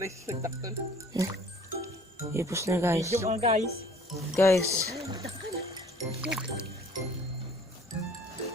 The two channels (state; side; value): normal; both; correlation 0.53